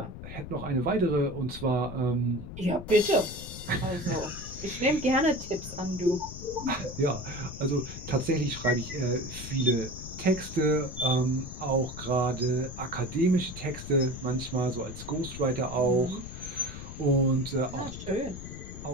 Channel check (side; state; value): left; noise; rumble, 11 dB below the sound